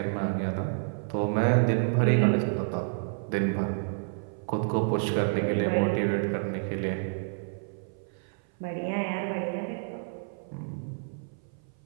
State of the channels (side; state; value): left; silent; 56 dB below the other